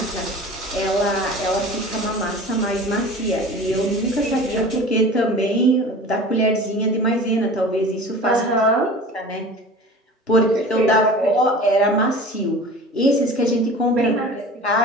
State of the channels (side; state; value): both; normal; correlation 0.39